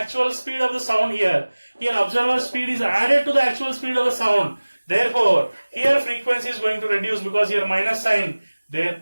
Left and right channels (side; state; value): both; inverted; correlation -1.00